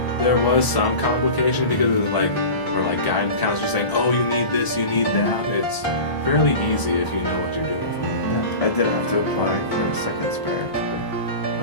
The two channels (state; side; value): late; right; 1.0 ms